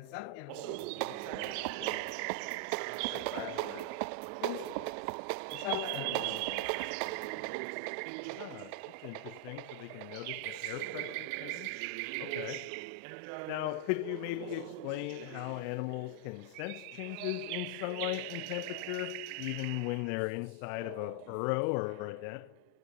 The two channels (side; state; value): both; different; correlation 0.00